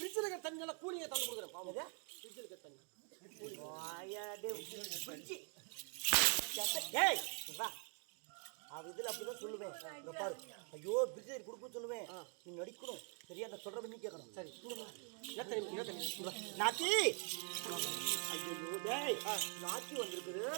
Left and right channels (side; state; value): left; quieter; 37.9 dB